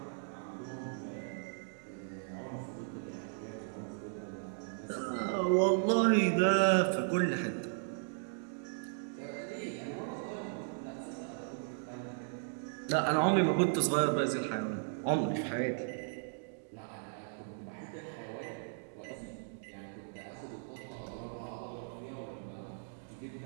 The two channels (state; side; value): silent; left; digital silence